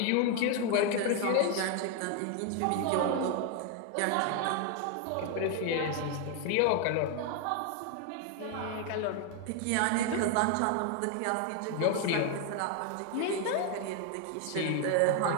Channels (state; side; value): different; both; correlation 0.01